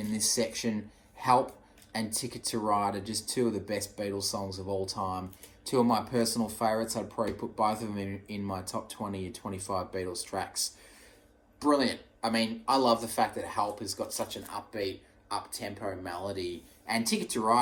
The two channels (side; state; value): both; identical; correlation 1.00